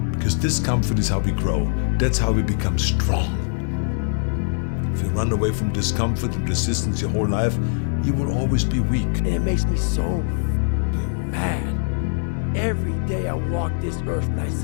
Because discomfort is how we grow. That's how we become strong. If you run away from discomfort and resistance your whole life, you will always be weak. And it makes me so mad. Every day I walk this earth and I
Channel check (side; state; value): right; silent; 64 dB below the other